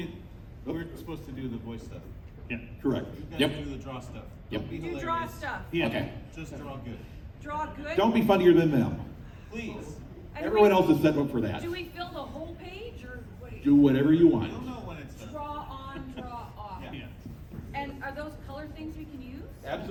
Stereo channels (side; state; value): both; identical; correlation 1.00